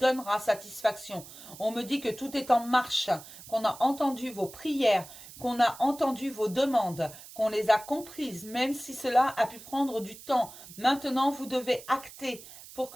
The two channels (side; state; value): right; noise; hiss, 17 dB below the sound